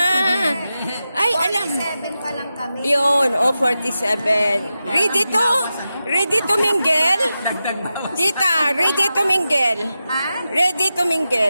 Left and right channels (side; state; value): both; inverted; correlation -0.91